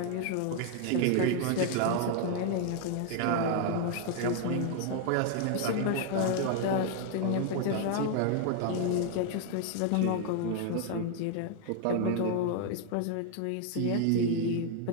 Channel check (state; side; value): different; both; correlation 0.00